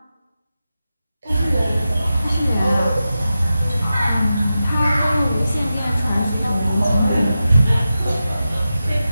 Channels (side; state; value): both; inverted; correlation -0.92